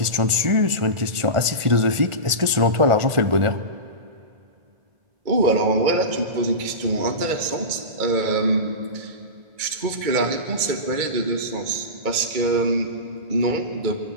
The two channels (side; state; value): left; late; 1.4 ms